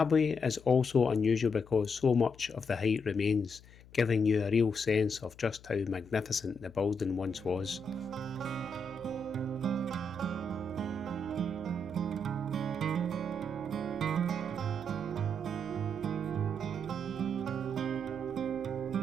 is also unusual because so much of the height remains, giving you a real sense of just how magnificent the building once was.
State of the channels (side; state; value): left; noise; hum, 22 dB below the sound